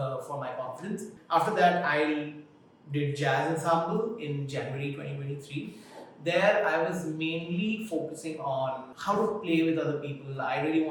my confidence. After that, I did Jazz Ensemble in January 2023. There, I was mainly focusing on how to play with other people. I really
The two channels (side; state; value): both; identical; correlation 1.00